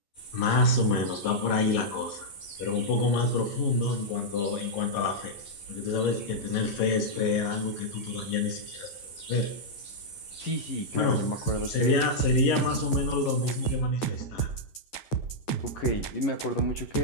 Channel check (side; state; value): right; late; 11 ms